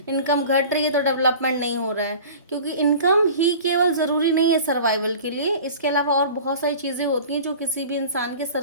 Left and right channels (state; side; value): inverted; both; correlation -0.41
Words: इनकम घट रही है तो डेवलपमेंट नहीं हो रहा है। क्योंकि इनकम ही केवल ज़रूरी नहीं है सर्वाइवल के लिए, इसके अलावा और बहुत सारी चीज़ें होती हैं जो किसी भी इंसान के